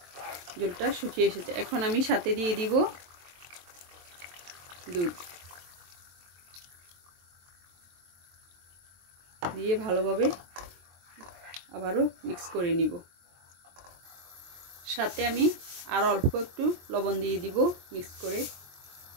জলটা শুকিয়ে এসেছে। এখন আমি সাথে দিয়ে দিব দুধ, দিয়ে ভালোভাবে আবারও মিক্স করে নিব। সাথে আমি আর অল্প একটু লবণ দিয়ে দিব মিক্স করে।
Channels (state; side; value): late; left; 23 ms